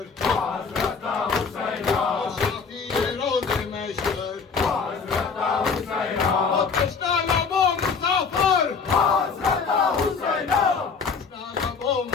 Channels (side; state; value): right; quieter; 5.4 dB